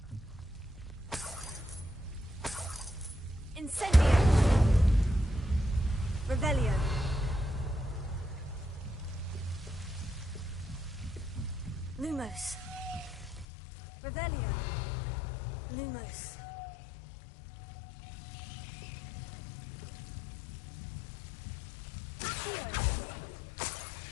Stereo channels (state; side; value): drops out; right; at 13.5 s